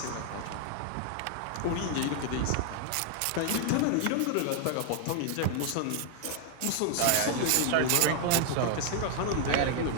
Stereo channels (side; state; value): both; different; correlation 0.00